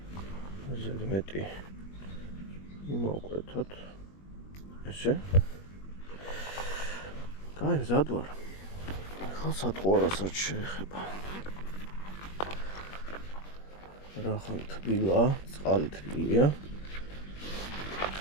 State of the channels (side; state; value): right; late; 21 ms